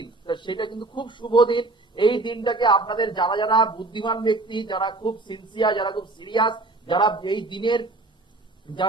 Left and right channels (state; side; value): quieter; left; 3.2 dB